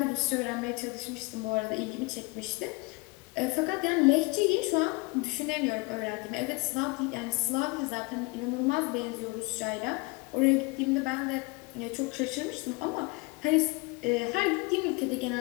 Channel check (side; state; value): right; quieter; 26.4 dB